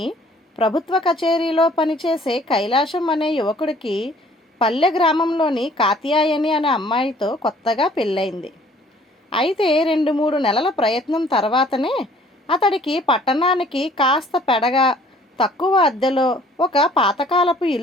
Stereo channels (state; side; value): normal; both; correlation 0.56